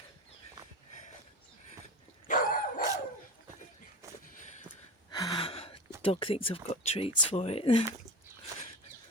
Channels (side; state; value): both; normal; correlation 0.29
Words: Dog thinks I've got treats for it.